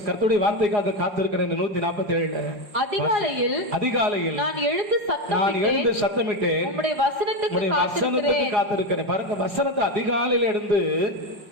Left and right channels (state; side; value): late; left; 4.8 ms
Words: கர்த்தருடைய வார்த்தைக்காக காத்திருக்கிறேன். 147 அதிகாலையில் நான் எழுந்து சத்தமிட்டேன், உம்முடைய வசனத்துக்கு காத்திருக்கிறேன். பாருங்க, வசனத்தை அதிகாலையில் எழுந்து